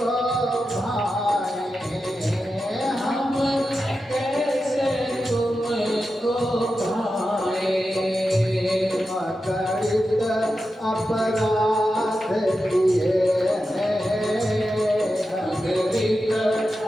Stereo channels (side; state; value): both; normal; correlation 0.90